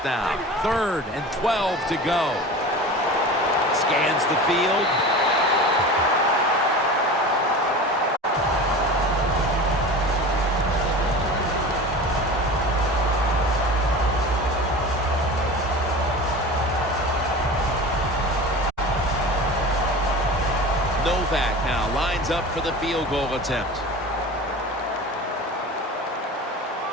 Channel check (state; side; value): normal; both; correlation 0.34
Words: down. 3rd and 12 to go. Scans the field. Novak now lines up for the field goal attempt.